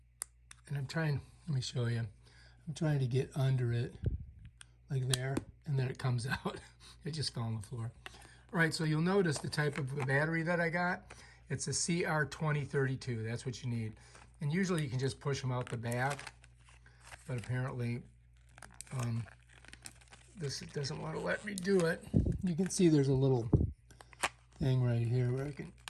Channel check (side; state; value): both; identical; correlation 1.00